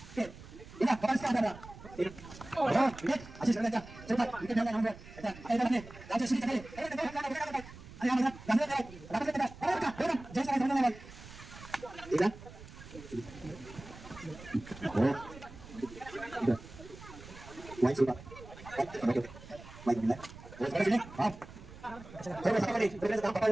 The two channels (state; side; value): noise; right; rumble, 16 dB below the sound